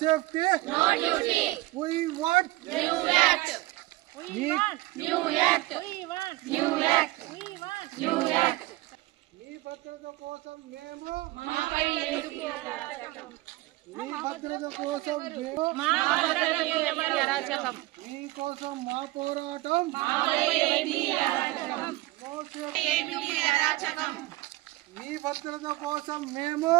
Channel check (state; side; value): quieter; left; 19.3 dB